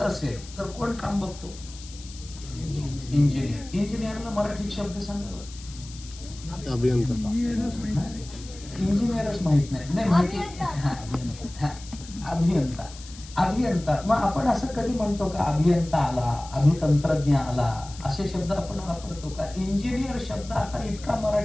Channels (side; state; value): left; noise; hiss, 17 dB below the sound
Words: असेल तर कोण काम बघतो? इंजिनियर. इंजिनियरला मराठीत शब्द सांगा. अभियंता. इंजिनियरच माहित नाही. नाही माहिती. अभियंता. अभियंता. मग आपण असं कधी म्हणतो का अभियंता आला, अभितंत्रज्ञ आला, असे शब्द आपण वापरतो का? इंजिनियर शब्द आता इतका